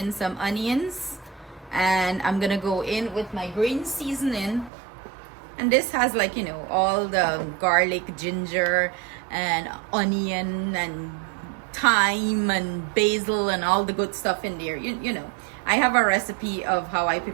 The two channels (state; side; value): drops out; left; at 4.7 s